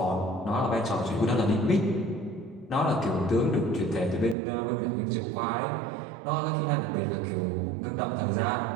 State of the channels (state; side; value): drops out; left; at 4.4 s